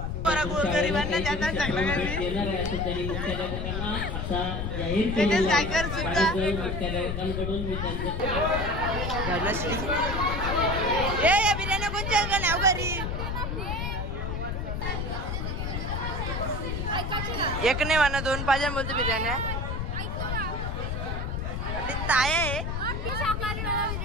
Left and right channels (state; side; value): noise; left; rumble, 2 dB below the sound